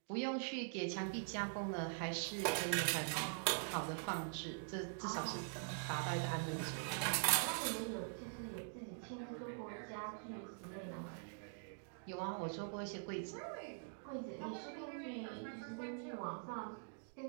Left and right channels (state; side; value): silent; left; digital silence